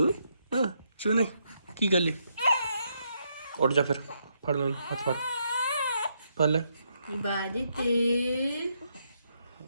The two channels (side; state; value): both; inverted; correlation -0.77